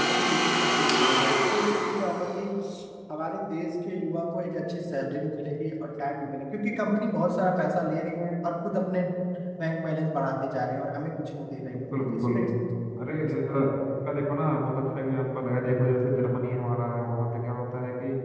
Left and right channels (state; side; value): identical; both; correlation 1.00